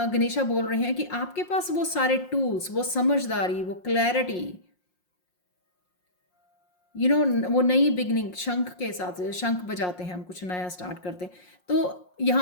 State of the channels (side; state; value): right; late; 5.6 ms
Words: बोल रहे हैं कि आपके पास वो सारे टूल्स, वो समझदारी, वो क्लैरिटी, वो नई बिगनिंग, शंख के साथ शंख बजाते हैं हम, कुछ नया स्टार्ट करते हैं, तो